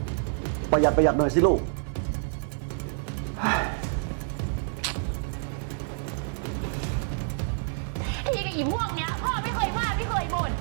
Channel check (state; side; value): silent; left; digital silence